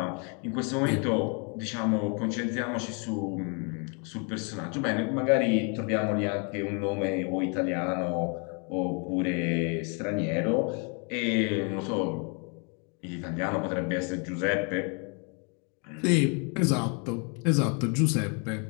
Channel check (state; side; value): quieter; right; 36.6 dB